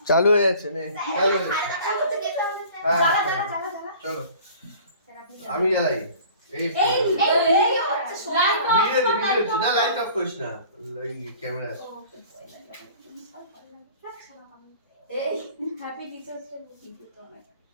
চালু হয়ে যাচ্ছে নে চালু হয়ে চলো আমি জ্বালাই এই না লাইট অফ করিস না ক্যামেরা এই হ্যাপি টিচার্স ডে ভিডিও তো আমার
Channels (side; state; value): both; inverted; correlation -0.46